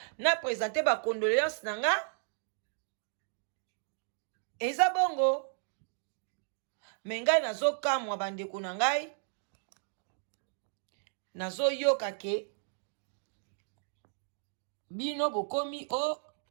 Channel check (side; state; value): left; silent; digital silence